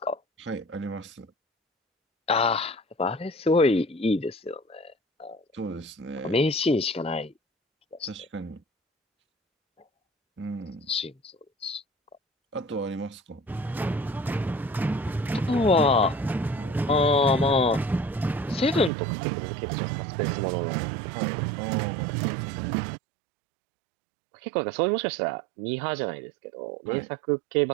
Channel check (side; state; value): left; drops out; at 18.9 s